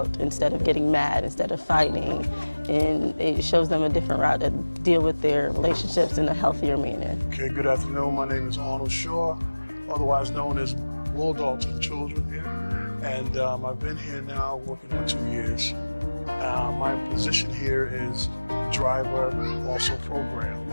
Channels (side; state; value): both; inverted; correlation -1.00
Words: instead of getting mad, instead of fighting, and it shows them a different route to deal with their relationships in a healthier manner. Okay, good afternoon. My name is Arnold Shaw, otherwise known as Bulldog to the children here. And I've been here now working on 2 years. My position here is driver, also program,